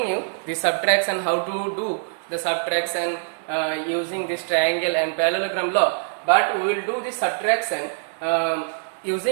you the subtraction, how to do the subtraction using this triangle and parallelogram law. But we will do the subtraction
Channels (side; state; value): left; silent; digital silence